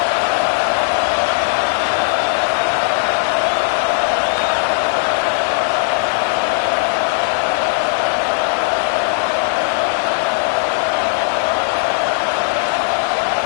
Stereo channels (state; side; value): silent; right; 63 dB below the other